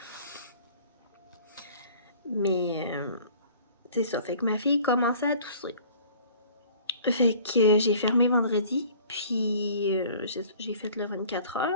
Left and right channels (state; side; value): inverted; both; correlation -0.50